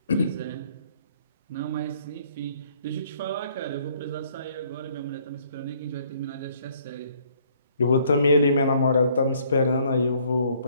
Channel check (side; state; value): both; inverted; correlation -0.63